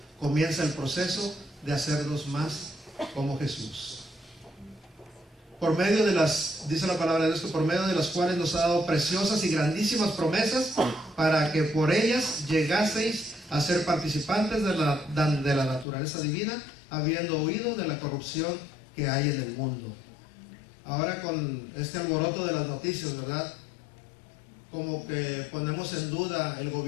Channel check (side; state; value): right; drops out; at 15.9 s